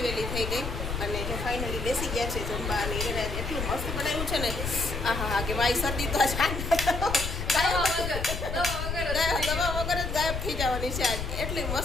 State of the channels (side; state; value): left; noise; rumble, 4 dB below the sound